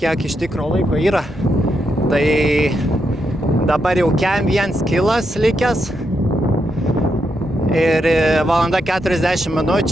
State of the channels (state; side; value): normal; both; correlation 0.82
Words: iš tikro laiko yra. Tai dabar jau kem 1 kilas likęs. Ir valanda 40